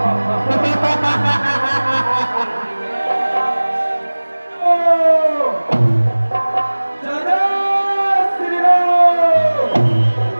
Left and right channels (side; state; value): both; inverted; correlation -1.00